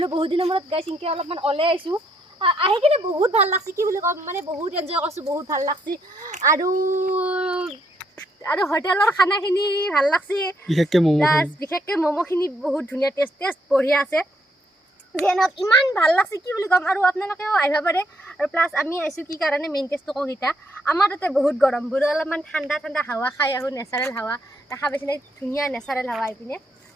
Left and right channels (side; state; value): both; normal; correlation 0.73